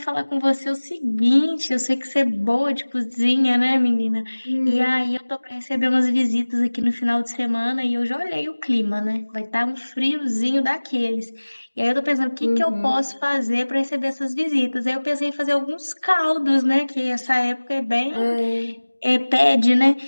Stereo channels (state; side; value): inverted; both; correlation -1.00